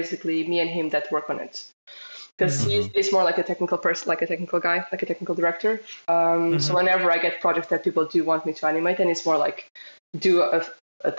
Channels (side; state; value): both; inverted; correlation -1.00